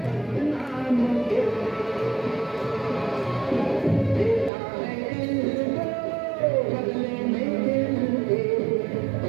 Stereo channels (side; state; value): left; drops out; at 4.5 s